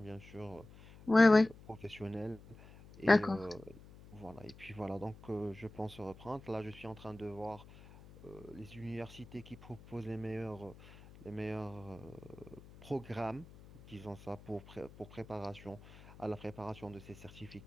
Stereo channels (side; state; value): left; noise; hum, 19 dB below the sound